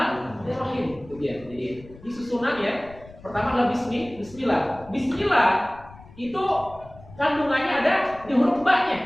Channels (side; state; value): left; noise; rumble, 21 dB below the sound